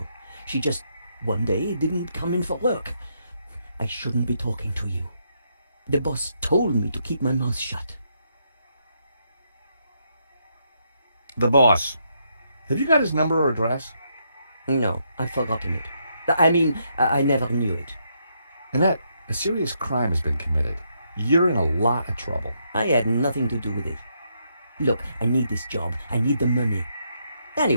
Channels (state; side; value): inverted; both; correlation -0.77